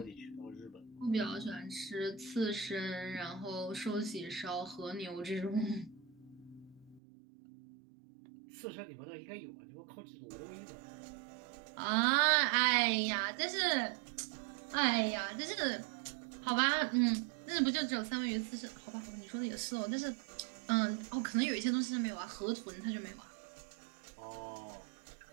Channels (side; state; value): left; drops out; at 7.0 s